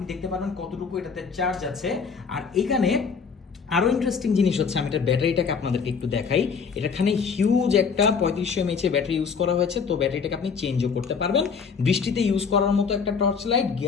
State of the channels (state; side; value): quieter; right; 5.8 dB